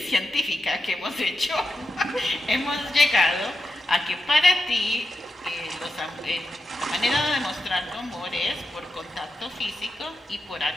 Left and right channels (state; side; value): normal; both; correlation 0.87